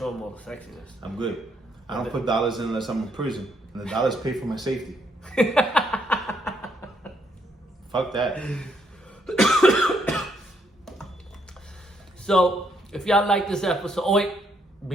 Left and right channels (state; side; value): normal; both; correlation 0.73